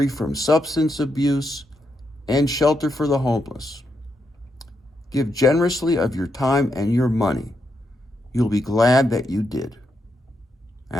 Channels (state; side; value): normal; both; correlation 0.82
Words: from substance abuse, and shelter for the homeless. Give generously of your time and your money. You'll be glad that you did.